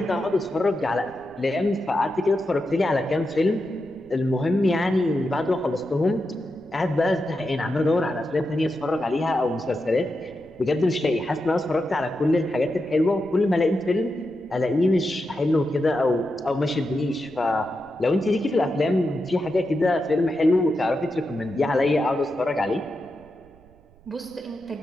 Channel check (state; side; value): noise; right; rumble, 28 dB below the sound